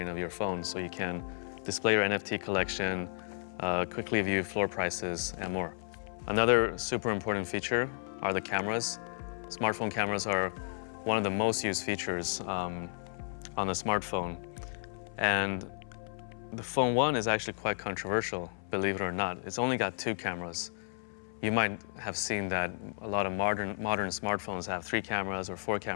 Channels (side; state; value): right; silent; 56 dB below the other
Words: of your phone, so you can display your NFT collection, quickly view floor prices, and more. Another super important feature are the cameras. Smartphone cameras are one of the most used features on the smartphone. And the Phone 1 is actually quite controversial, believe it or not. It's only got 2 cameras. You might have seen that a lot of modern smartphones have 3 cameras or 4